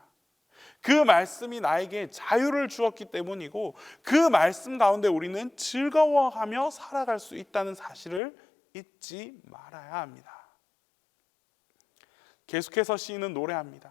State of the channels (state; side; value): drops out; right; at 8.2 s